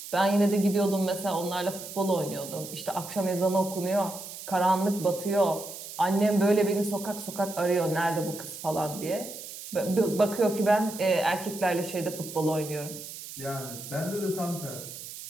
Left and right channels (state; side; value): noise; right; hiss, 11 dB below the sound